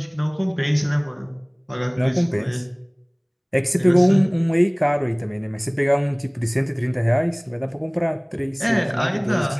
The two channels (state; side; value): identical; both; correlation 1.00